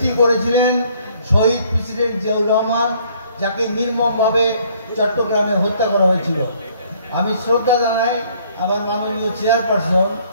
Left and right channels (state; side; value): inverted; both; correlation -0.62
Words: করেছিলেন শহীদ প্রেসিডেন্ট জিয়াউর রহমান, যাকে নির্মমভাবে চট্টগ্রামে হত্যা করা হয়েছিল। আমি শ্রদ্ধা জানাই আমার মাননীয় চেয়ারপারসন,